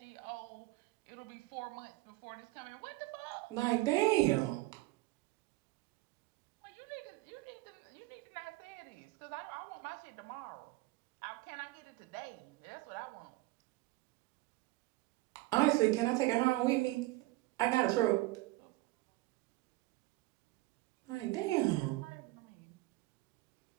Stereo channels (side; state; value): left; quieter; 19.6 dB